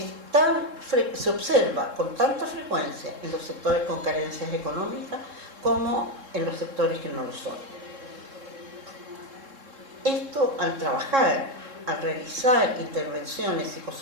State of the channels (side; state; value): left; late; 3.7 ms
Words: se observa con tanta frecuencia en los sectores con carencias económicas como en los sectores que no lo son. Esto, al trabajar, al realizar intervenciones